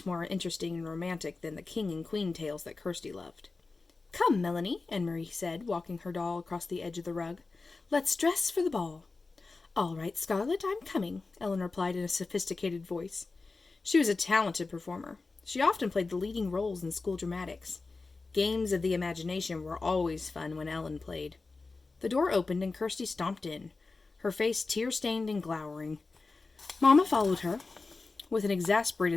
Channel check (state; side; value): quieter; right; 3.8 dB